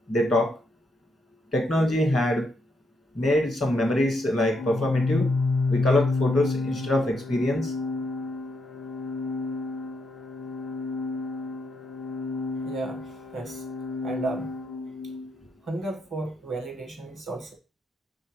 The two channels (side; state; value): both; normal; correlation 0.79